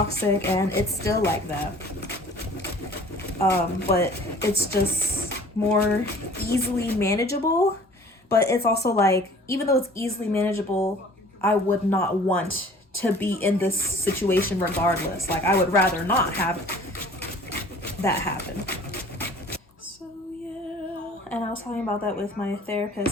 and it's still like that. But it's just more easily manageable. But it's also like, even though it's easily manageable, I would not want to be in this situation regardless. Like, I would rather not have that happen. So yeah, and I was talking about that with my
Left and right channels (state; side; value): normal; both; correlation 0.49